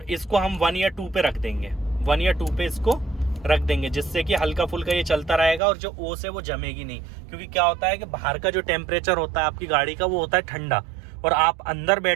इसको हम 1 या 2 पे रख देंगे, 1 या 2 पे इसको रख देंगे, जिससे कि हल्का फुल्का ये चलता रहेगा और जो ओस है वो जमेगी नहीं। क्योंकि क्या होता है कि बाहर का जो टेम्परेचर होता है आपकी गाड़ी का वो होता है ठंडा, और आप अंदर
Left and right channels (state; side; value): drops out; left; at 5.6 s